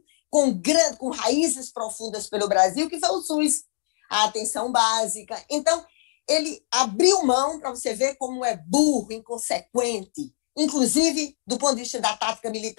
com raízes profundas pelo Brasil, que foi o SUS, a atenção básica. Então, ele abriu mão, para você ver como é burro, inconsequente, inclusive do ponto de vista da tática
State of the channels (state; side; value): silent; right; digital silence